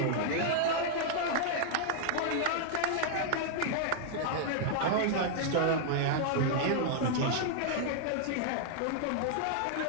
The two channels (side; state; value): both; different; correlation -0.01